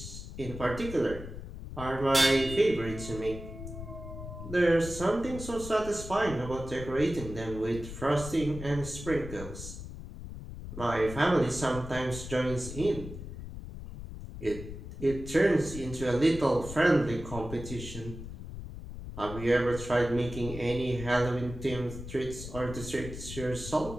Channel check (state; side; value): noise; left; rumble, 10 dB below the sound